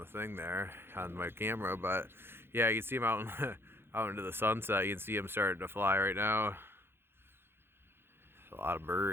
thing there on my camera, but yeah, you can see them out out into the sunset. You can see them starting to fly right now. A lot of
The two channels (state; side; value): late; left; 0.11 ms